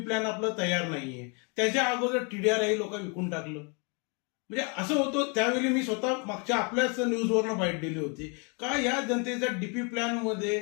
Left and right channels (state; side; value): quieter; right; 34.4 dB